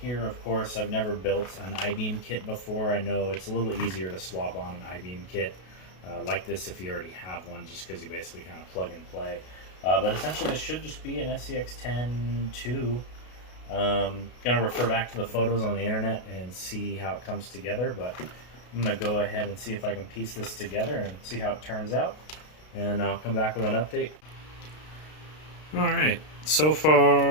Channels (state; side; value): late; right; 33 ms